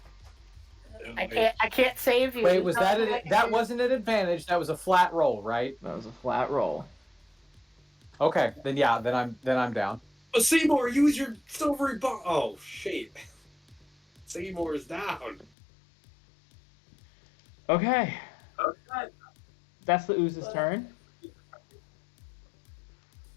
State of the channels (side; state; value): right; drops out; at 15.5 s